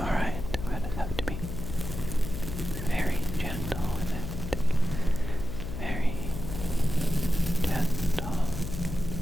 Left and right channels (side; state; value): left; noise; hum, 6 dB below the sound